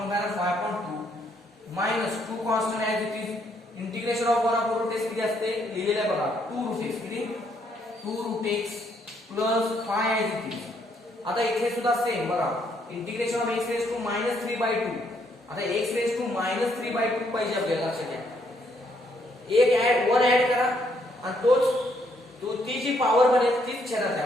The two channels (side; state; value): both; normal; correlation 0.71